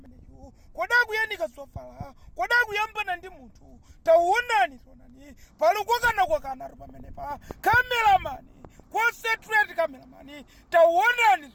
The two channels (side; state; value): both; identical; correlation 1.00